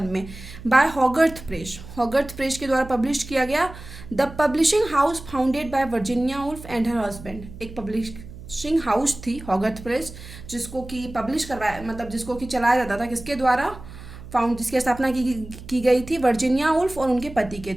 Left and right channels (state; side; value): noise; right; hum, 15 dB below the sound